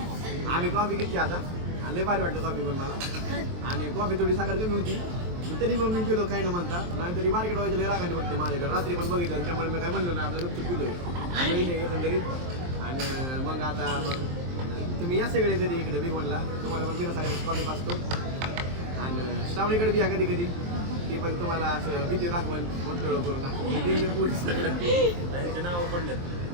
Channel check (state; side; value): late; left; 23 ms